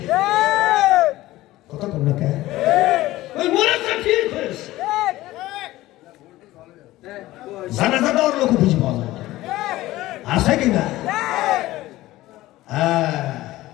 কথা কন না কে ওই মরেছে ঠিক হয়েছে, জানাজা দেওয়ার লোক খুঁজে পাওয়া যায় আছে কিনা?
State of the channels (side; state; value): right; quieter; 16.8 dB